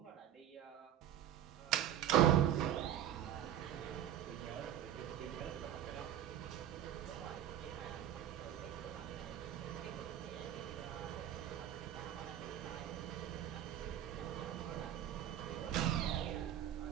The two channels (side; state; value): left; quieter; 11.2 dB